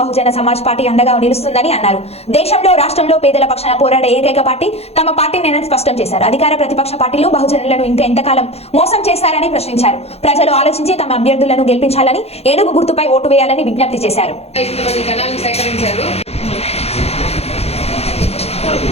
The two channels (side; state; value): right; late; 0.30 ms